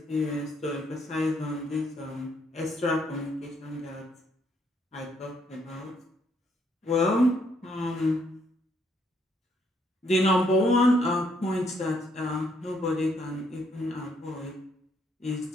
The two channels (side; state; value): both; normal; correlation 0.71